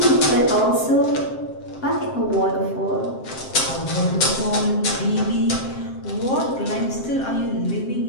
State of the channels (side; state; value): right; late; 7.6 ms